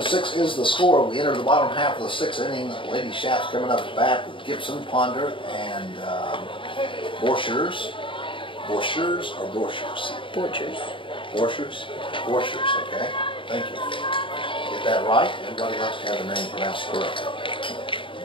is the score. We enter the bottom half of the sixth inning. Lady Shaps coming up to bat with Gibson, Ponder, and Borchers. Borchers or Borchers? Borchers. Borchers? Borchers, okay. Thank you. Get that right. Everybody likes to have the name pronounced correctly.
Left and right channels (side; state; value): right; late; 0.25 ms